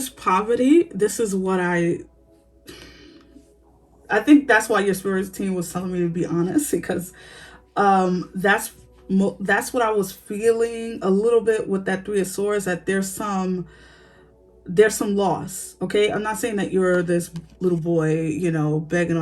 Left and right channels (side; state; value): both; identical; correlation 1.00